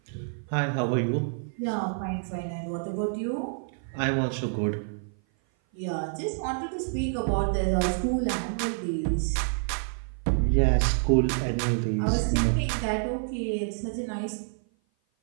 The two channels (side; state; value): left; silent; 55 dB below the other